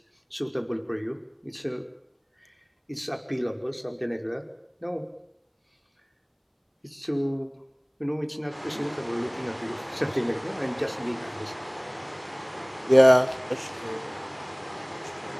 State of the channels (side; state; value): both; identical; correlation 1.00